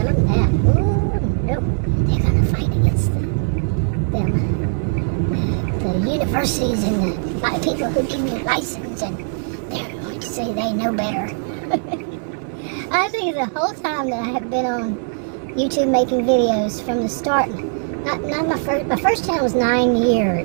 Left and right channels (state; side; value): silent; left; 66 dB below the other